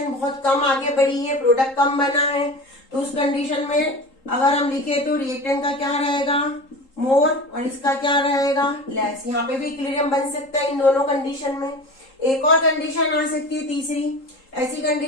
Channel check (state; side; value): late; right; 3.8 ms